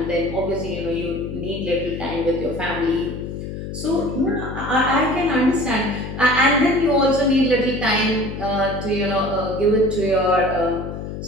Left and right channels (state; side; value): noise; left; hum, 7 dB below the sound